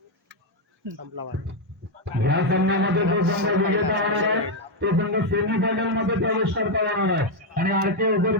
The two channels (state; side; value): normal; both; correlation 0.02